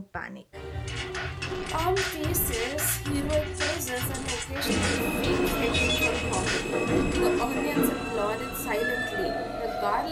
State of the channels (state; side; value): identical; both; correlation 1.00